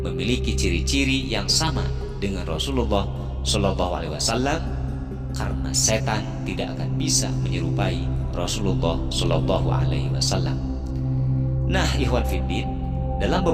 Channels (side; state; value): both; identical; correlation 1.00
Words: memiliki ciri-ciri yang sama dengan Rasulullah Shallallahu Alaihi Wasallam, karena setan tidak akan bisa menyerupai Rasulullah Shallallahu Alaihi Wasallam. Nah, Ikhwan Fiddin, dalam